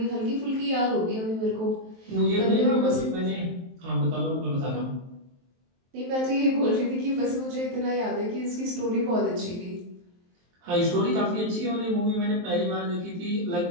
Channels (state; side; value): late; left; 23 ms